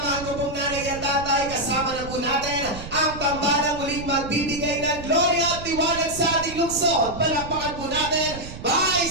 ko pong nanay at tatay, kasama na po natin ang tambalang muling magbibigay ng gloria at liwanag sa ating lungsod. Palakpakan po natin,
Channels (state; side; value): noise; right; rumble, 11 dB below the sound